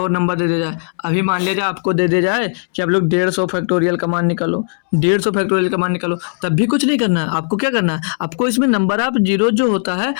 नंबर दे दिया जाए, अभी मान लिया जाए आपको दे दिया जाए कि आप लोग 150 फैक्टोरियल का मान निकालो, 150 फैक्टोरियल का मान निकालो, तब भी कुछ नहीं करना है। आपको क्या करना है, आपको इसमें नंबर ऑफ जीरो जो होता है,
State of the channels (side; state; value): right; silent; digital silence